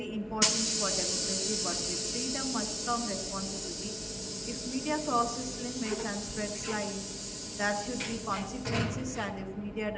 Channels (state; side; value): identical; both; correlation 1.00